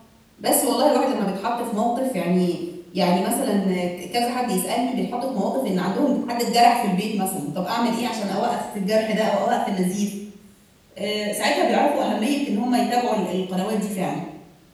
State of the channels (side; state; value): both; identical; correlation 1.00